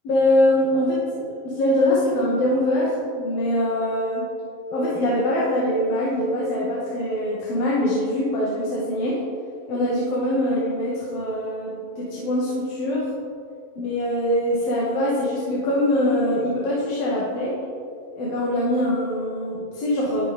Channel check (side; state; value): right; late; 11 ms